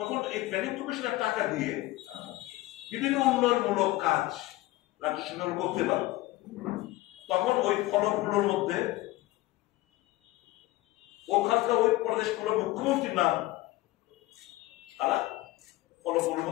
এই প্ল্যানিং কমিশনের টাকা দিয়ে বিভিন্ন উন্নয়নমূলক কাজ রাজ্য সরকার করতে পারত। তখন ওই ফলকগুলোর মধ্যে ওখানকার ওই প্রদেশগুলোর মুখ্যমন্ত্রীর নাম তারা ফলকগুলোর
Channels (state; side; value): quieter; right; 18.4 dB